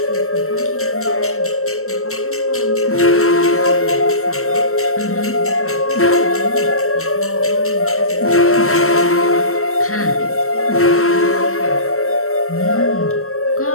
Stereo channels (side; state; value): right; late; 0.63 ms